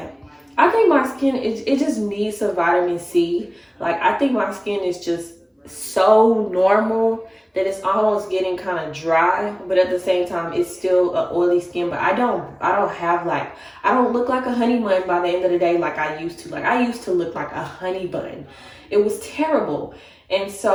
I think my skin, it just needs some vitamin C. Like, I think my skin is just so normal that it's almost getting kind of dry, but at the same time it's still an oily skin. But I don't have like, I don't look like a honey bun by the end of the day like I used to. Like, I used to look like a honey bun. It was terrible. And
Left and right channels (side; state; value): both; identical; correlation 1.00